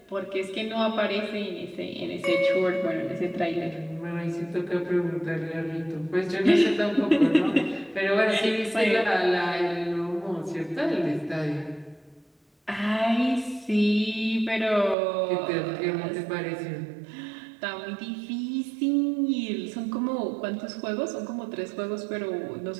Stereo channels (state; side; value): drops out; left; at 15.0 s